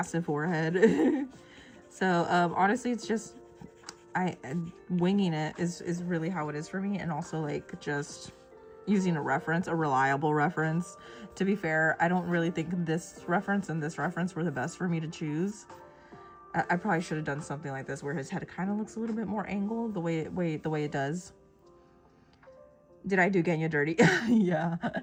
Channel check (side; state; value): both; identical; correlation 1.00